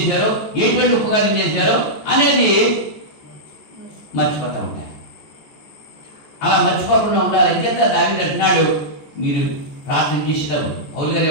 ఎటువంటి ఉపకారం చేశారు అనేది మర్చిపోతూ ఉంటారు. అలా మర్చిపోకుండా ఉండాలి. అంచేత దావీదు అంటున్నాడు, మీరు ప్రార్థన చేసేటప్పుడు పౌలు గారు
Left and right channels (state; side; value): late; right; 14 ms